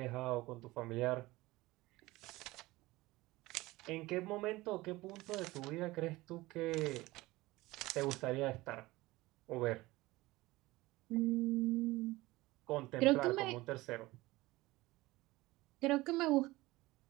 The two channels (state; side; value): quieter; left; 19.8 dB